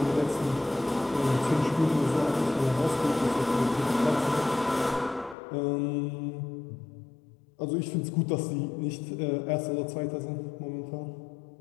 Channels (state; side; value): drops out; right; at 5.4 s